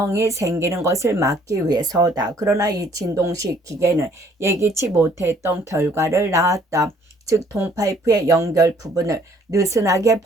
생기는 것을 막기 위해서다. 그러나 이 진동식 기계는 예기치 못했던 결과를 낳았다. 즉 동파이프의 연결 부분을 느슨하게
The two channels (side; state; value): both; normal; correlation 0.61